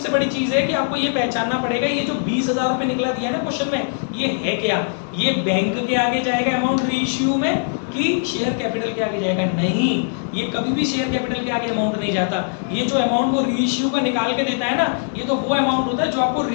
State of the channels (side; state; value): right; silent; digital silence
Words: बड़ी चीज है कि आपको ये पहचानना पड़ेगा, ये जो 20,000 रुपए निकला दिया है ना क्वेश्चन में, ये है क्या? ये बैंक के आगे जाएगा अमाउंट रीइश्यू में कि शेयर कैपिटल के आगे जाएगा? नहीं, ये कभी भी शेयर कैपिटल के आगे अमाउंट नहीं जाता। ये जो अमाउंट वो रीइश्यू का निकाल के देता है ना, ये तो वो अमाउंट होता है जो आपको